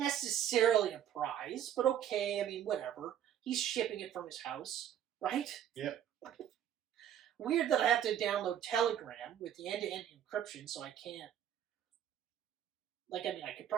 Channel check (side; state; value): left; quieter; 10.2 dB